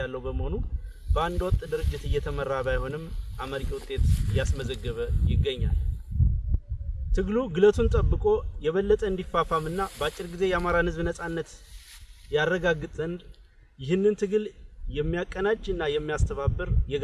ያለው በመሆኑ በአንድ ወጥ ድርጅት እየተመራ ባይሆንም አመርቂ ውጤት እያስመዘገበ ይገኛል። ትግሉ ግለቱን ጠብቆ የበለጠ እንዲፋፋምና በአጭር ጊዜ የአማራን ህዝብ ነጻነት ያረጋግጥ ዘንድ ይህንን ትግል የሚያቀናጅና የሚያስተባብር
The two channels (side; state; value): both; identical; correlation 1.00